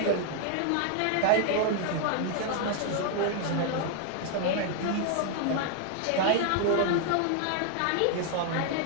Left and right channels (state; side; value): different; both; correlation 0.00